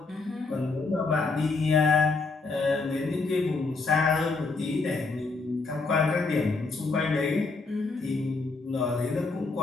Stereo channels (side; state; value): right; quieter; 3.9 dB